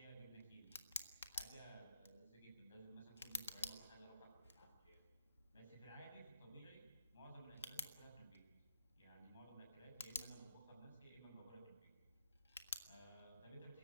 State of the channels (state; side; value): inverted; both; correlation -0.73